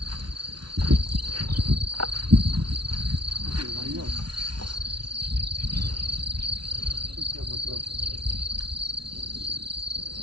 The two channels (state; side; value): late; left; 0.72 ms